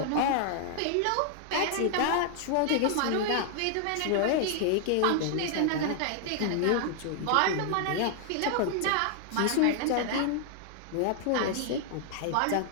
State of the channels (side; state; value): both; different; correlation 0.00